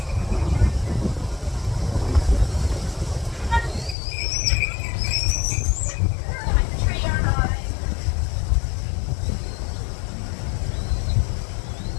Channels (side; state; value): right; drops out; at 4.0 s